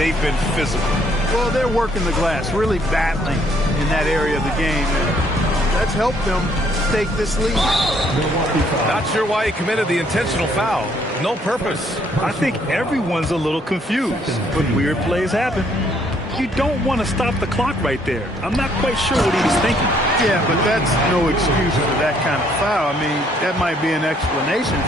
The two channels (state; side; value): normal; both; correlation 0.66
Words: been physical. Well, they're working the glass, really battling in that area of the game. And that's helped them take this lead. Not sure why he committed the intentional foul. No purpose. I think everyone's a little confused, but weird plays happen. You don't want to stop the clock right there. I'm not quite sure what he was thinking. Yeah, but that's no excuse for that kind of foul. I mean, that might be an explanation